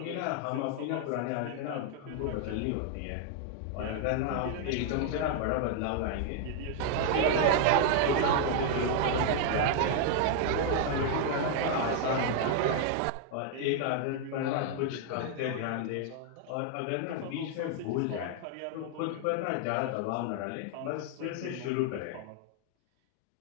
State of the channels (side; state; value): both; different; correlation 0.00